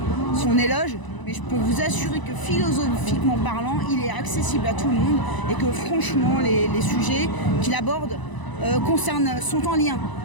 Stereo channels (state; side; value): late; right; 1.0 ms